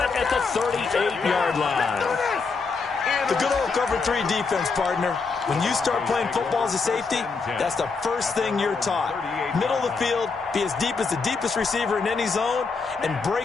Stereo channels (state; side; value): quieter; right; 4.6 dB